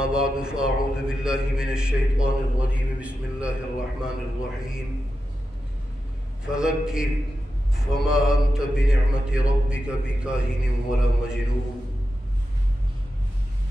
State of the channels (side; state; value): both; normal; correlation 0.90